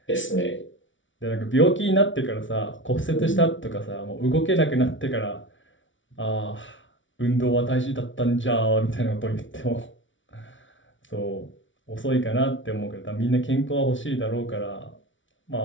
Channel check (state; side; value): late; right; 0.56 ms